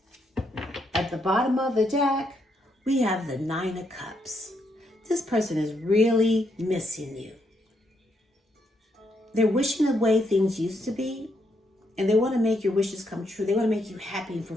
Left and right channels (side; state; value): both; normal; correlation 0.77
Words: At the bottom of the deck, we have the Nine of Cups. This person is really missing you. They're wishing away things used to be, and they want to make your wishes come true. They want to make you happy and